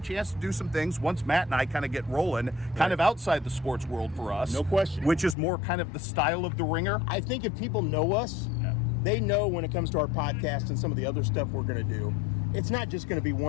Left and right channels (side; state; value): right; drops out; at 5.4 s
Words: to do some things once Matt and I kind of get rolling, kind of outside the sports world for us. No question. Which is more kind of the style of the Ringer. I think if people know us, they know when it comes to our podcast and some of the other stuff we're going to do, it's not just going to be